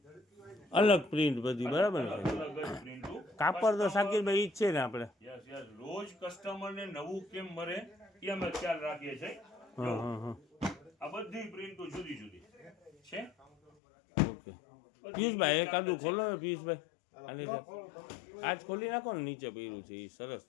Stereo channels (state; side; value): drops out; right; at 13.7 s